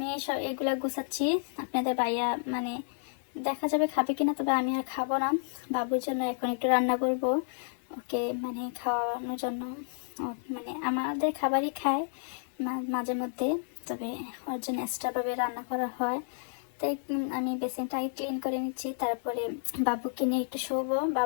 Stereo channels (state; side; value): silent; right; digital silence